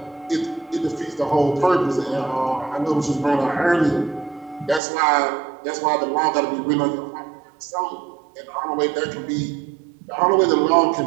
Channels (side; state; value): left; drops out; at 4.8 s